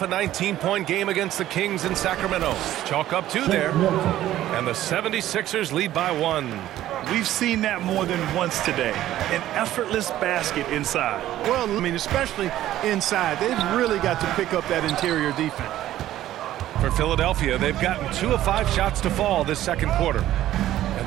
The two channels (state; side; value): quieter; left; 13.5 dB